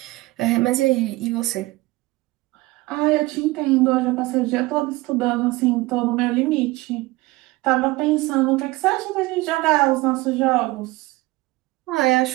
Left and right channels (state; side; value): quieter; left; 20.5 dB